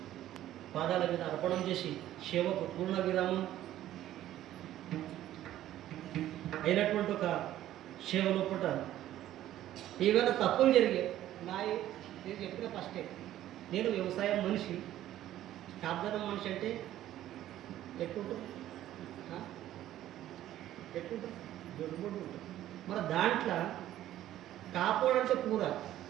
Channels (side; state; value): left; quieter; 13.1 dB